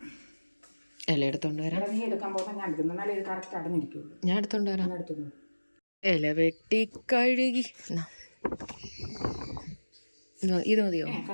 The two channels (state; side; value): inverted; both; correlation -1.00